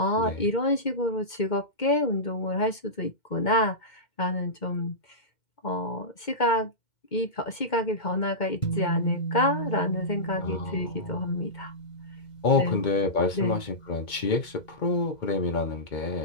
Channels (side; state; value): right; late; 2.2 ms